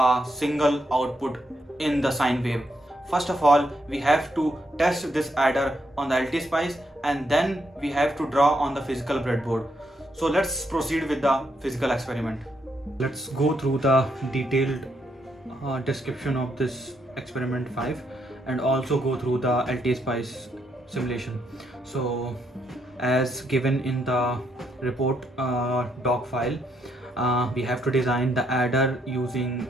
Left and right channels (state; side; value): normal; both; correlation 0.77